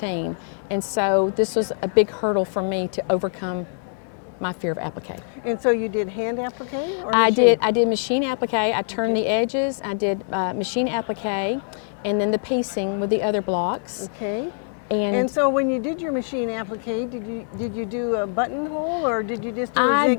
And so this was a big hurdle for me to overcome my fear of applique. And so you did hand applique or I machine? did machine applique. I turned the edges. I did machine applique and then the piecing with the other blocks. Okay. And so when you did your machine applique, did you do a buttonhole or did you just do a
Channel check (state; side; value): silent; right; 57 dB below the other